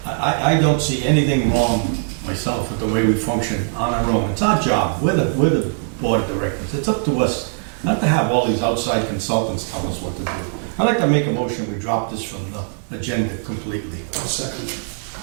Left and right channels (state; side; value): silent; left; digital silence